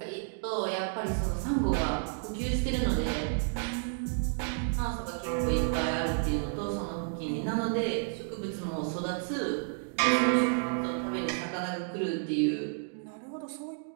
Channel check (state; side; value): silent; left; digital silence